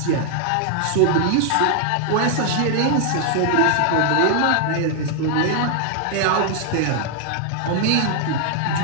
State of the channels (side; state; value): both; different; correlation 0.00